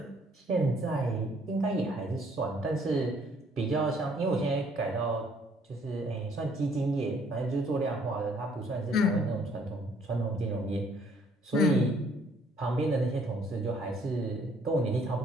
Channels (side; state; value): both; normal; correlation 0.63